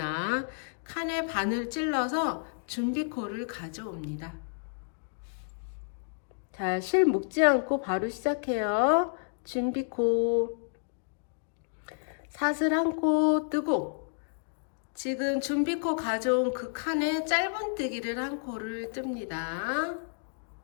칸에 바늘 찔러서 준비코를 가져옵니다. 자, 실 묶지 않고 바로 시작해요. 준비코 사슬 한 코 뜨고 지금 준비코 가져온 그 칸에 짧은뜨기를 한 코를 뜹니다.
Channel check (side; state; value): right; silent; digital silence